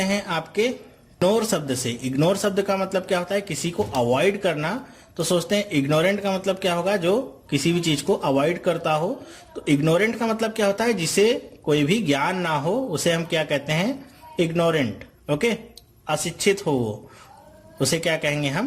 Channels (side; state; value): both; identical; correlation 1.00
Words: हैं आपके इग्नोर शब्द से। इग्नोर शब्द का मतलब क्या होता है, किसी को अवॉइड करना, तो सोचते हैं इग्नोरेंट का मतलब क्या होगा, जो किसी भी चीज को अवॉइड करता हो। तो इग्नोरेंट का मतलब क्या होता है, जिसे कोई भी ज्ञान ना हो उसे हम क्या कहते हैं, इग्नोरेंट। ओके, अशिक्षित हो वो, उसे क्या कहेंगे